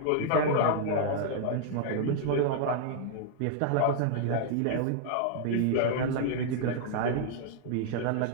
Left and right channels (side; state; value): both; different; correlation -0.01